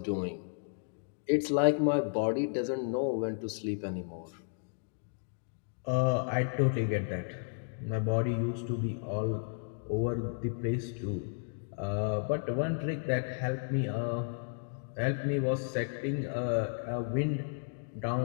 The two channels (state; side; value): silent; right; digital silence